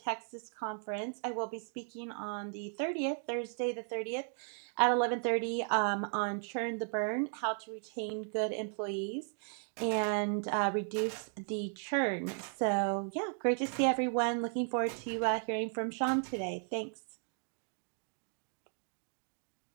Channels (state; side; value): silent; left; 54 dB below the other